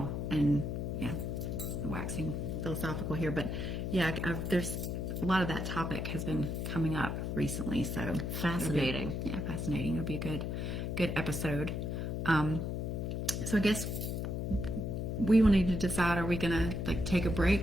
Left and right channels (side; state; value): left; noise; hum, 2 dB below the sound